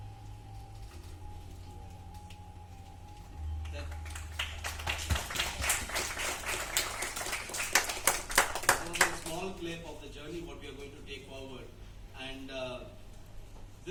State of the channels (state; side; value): identical; both; correlation 1.00